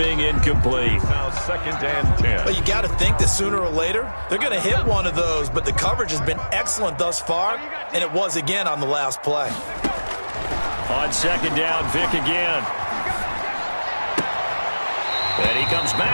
incomplete. Now 2nd and 10. But you got to think that sooner or later, they're going to hit one of those, but the coverage has been excellent thus far, and it was again on the last play. On second down, Vick again. And he comes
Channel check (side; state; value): both; inverted; correlation -1.00